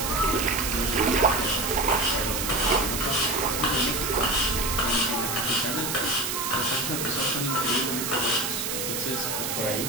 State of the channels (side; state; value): right; noise; hiss, 2 dB below the sound